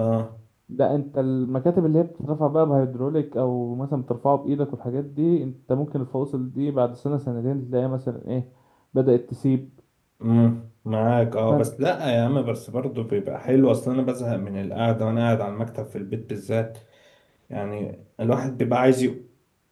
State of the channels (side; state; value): both; identical; correlation 1.00